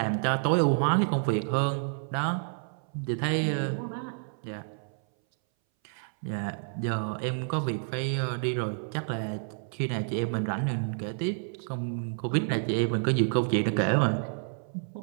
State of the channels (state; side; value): silent; left; 58 dB below the other